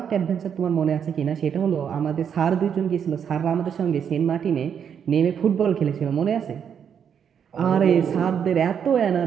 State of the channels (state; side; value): quieter; left; 7.9 dB